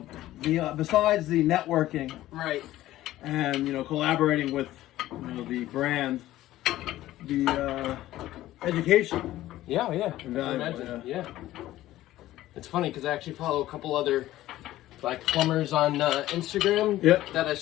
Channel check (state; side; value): quieter; right; 15.0 dB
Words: besides the networking. Right. And, collaborating with, the brand, the education. Yeah. I can Invaluable, imagine. Yeah. It's funny because I actually follow a couple other plumbers on Instagram. Yep. That I